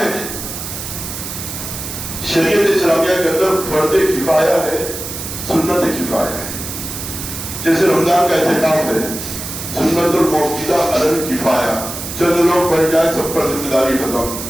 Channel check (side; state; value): right; noise; hiss, 8 dB below the sound